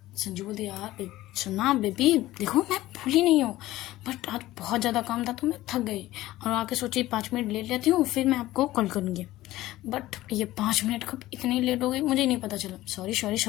संजू बोलती यार सुना बेबी, देखो मैं भूली नहीं हूँ, बट आज बहुत ज़्यादा काम था तो मैं थक गई, और आके सोची 5 मिनट लेट लेती हूँ, फिर मैं आपको कॉल करूँगी, बट ये 5 मिनट कब इतनी लेट हो गई मुझे नहीं पता चला,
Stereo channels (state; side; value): quieter; right; 16.3 dB